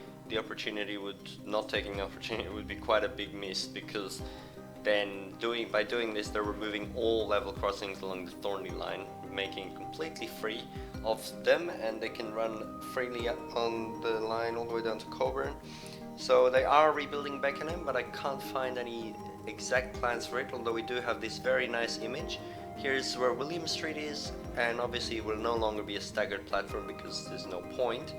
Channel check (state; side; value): identical; both; correlation 1.00